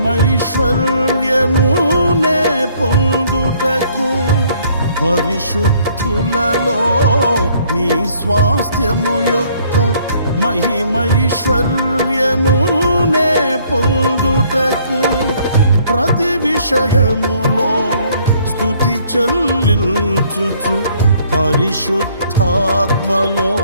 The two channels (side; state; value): both; inverted; correlation -0.63